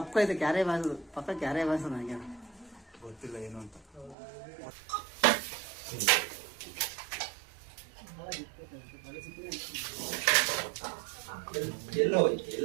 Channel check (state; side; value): drops out; left; at 4.2 s